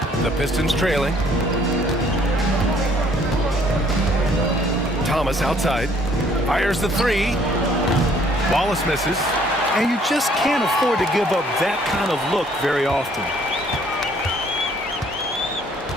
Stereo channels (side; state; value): both; normal; correlation 0.61